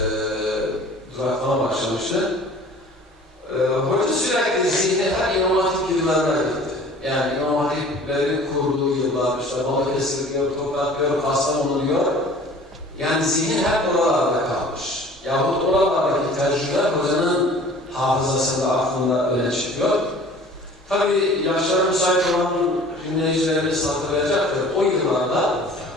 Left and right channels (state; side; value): normal; both; correlation 0.47